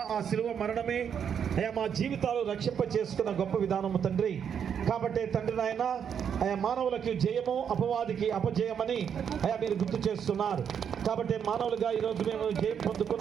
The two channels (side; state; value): left; quieter; 7.9 dB